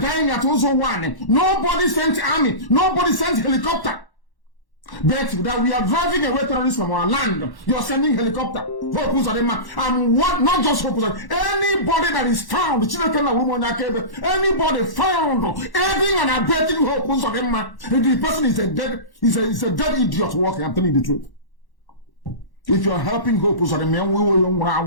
at Ozo 1, nobody sent army, nobody sent helicopter. But that we are driving away terrorists from our land, you're sending helicopter. And what, not just anybody that is found, anybody found aiding and abetting the person is a dead idiot walking, I'm telling you the truth. If you're helping Hope, you are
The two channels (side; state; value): right; late; 1.1 ms